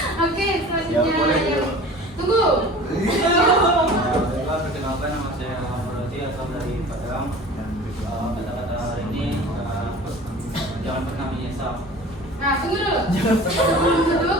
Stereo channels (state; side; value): normal; both; correlation 0.41